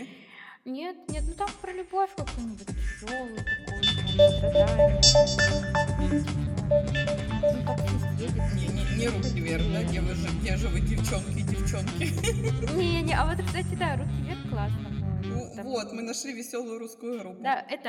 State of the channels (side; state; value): both; identical; correlation 1.00